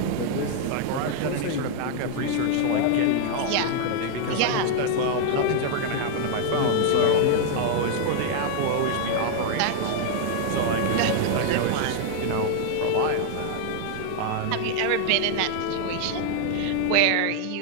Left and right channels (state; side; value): different; both; correlation -0.01